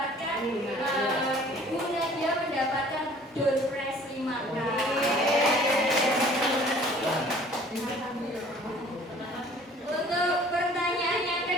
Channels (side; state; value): both; normal; correlation 0.52